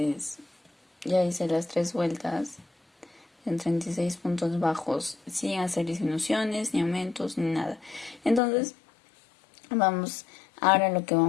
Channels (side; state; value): right; drops out; at 8.4 s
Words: ya hice las 3 vueltas en 36 puntos bajos sin hacer disminuciones, ni aumentos, ni nada. Entonces, ahora lo que